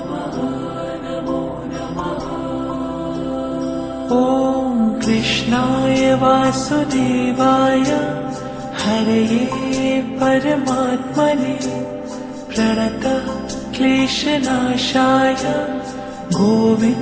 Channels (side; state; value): both; identical; correlation 1.00